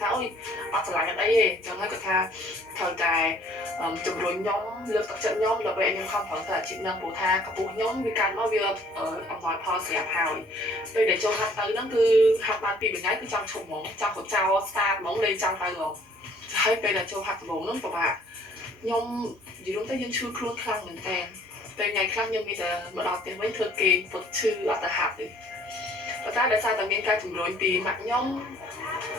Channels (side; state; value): both; normal; correlation 0.58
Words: ơi ở trở lại cái đấy chẳng hay người ta thời đại chụp rồi nhóm lượt tập trận nhóm là vậy nhưng không phải là chị năng bổ tha các bộ nhóm vì càng nói việc ở nói pause sẽ hào bây để cho hạt tới nó cứ hạt ban pi bên ngay cứ trong chục móng trong một trao xa móng lên trong tay rồi hay bây là cho hạt móng nó của bạn nhom gì đúng tới dân chưa khuôn khăn mình tèn về ngày khăn nhưng bây giờ mà đọc tiền mấy thư kỳ vật chư ở tại hạt thì và ta đã sai tầm miền cai chủng rồi tì mặt nhóm